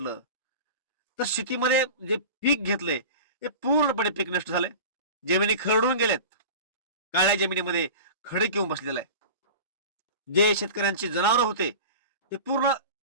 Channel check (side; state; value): both; inverted; correlation -0.34